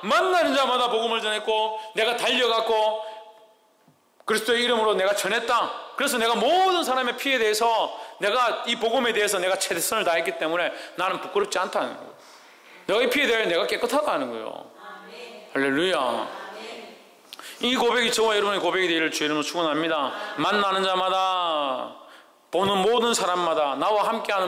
만나는 자마다 복음을 전했고 내가 달려갔고 그리스도의 이름으로 내가 전했다. 그래서 내가 모든 사람의 피에 대해서, 내가 이 복음에 대해서 내가 최선을 다했기 때문에 나는 부끄럽지 않다는 거예요. 내가 이 피에 대해 내가 깨끗하다는 거예요. 할렐루야. 이 고백이 저와 여러분의 고백이 되기를 주의 이름으로 축원합니다. 만나는 자마다, 보는 모든 사람마다, 나와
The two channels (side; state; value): both; identical; correlation 1.00